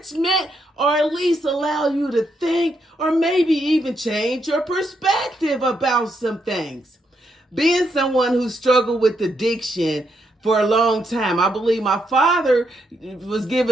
or at least allow you to think or maybe even change your perspective about some things. Being someone who struggled with addiction for a long time, I believe my father was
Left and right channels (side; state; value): both; normal; correlation 0.79